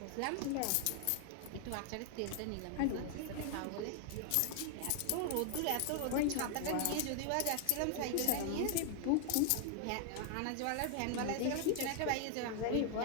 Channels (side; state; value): both; different; correlation 0.00